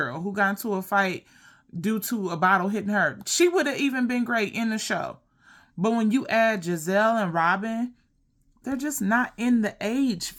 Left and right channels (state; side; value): identical; both; correlation 1.00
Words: who got into a fight due to a bottle hitting her, she would have even been great in the show. But when you add Giselle and Robin, they're just not in the age